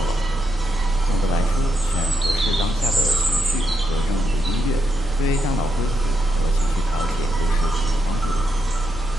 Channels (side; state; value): both; normal; correlation 0.82